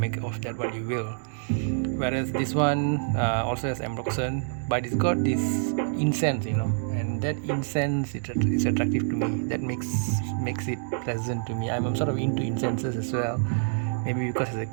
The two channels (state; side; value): silent; left; digital silence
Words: of that what you will. Whereas this one also has ambroxan, but it's got this incense, and that incense is attractive to me. That makes it pleasant to me. I'm sort of into incenses as well. Maybe because as a